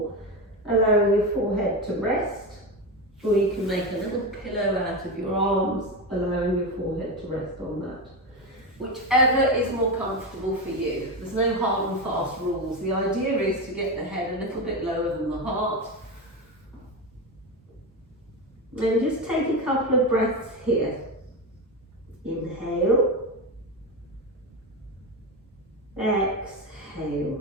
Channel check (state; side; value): normal; both; correlation 0.16